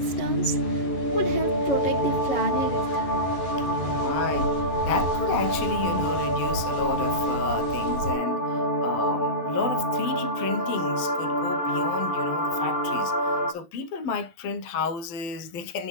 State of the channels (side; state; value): right; late; 12 ms